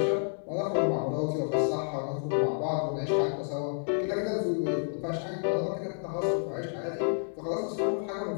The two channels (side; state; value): right; silent; 58 dB below the other